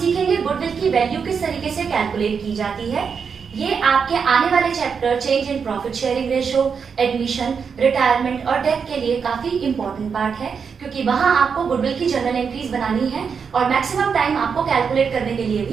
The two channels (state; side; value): quieter; left; 6.2 dB